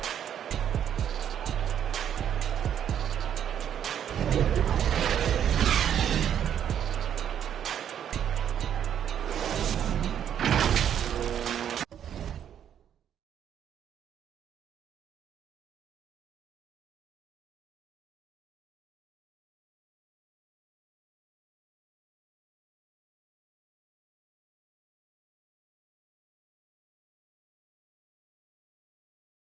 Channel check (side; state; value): left; quieter; 9.4 dB